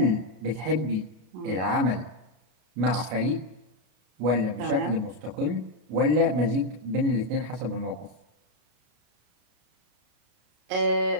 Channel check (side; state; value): left; late; 33 ms